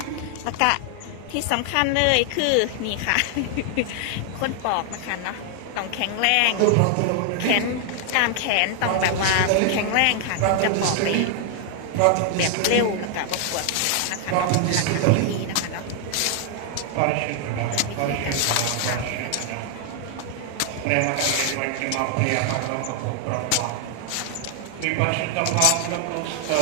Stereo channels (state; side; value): different; both; correlation 0.00